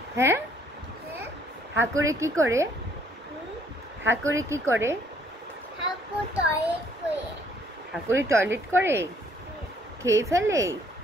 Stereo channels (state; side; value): normal; both; correlation 0.64